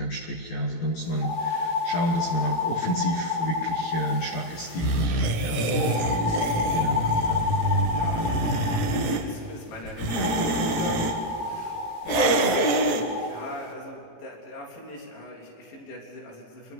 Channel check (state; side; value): late; right; 18 ms